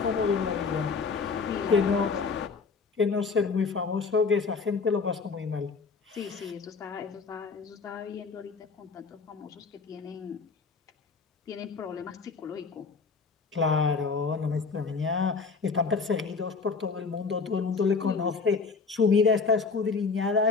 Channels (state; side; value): quieter; right; 4.8 dB